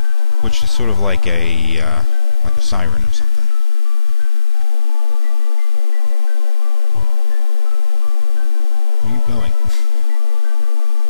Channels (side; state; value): both; normal; correlation 0.94